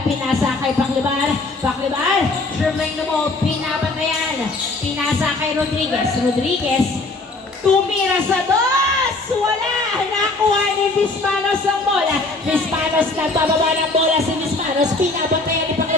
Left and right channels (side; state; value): right; quieter; 3.3 dB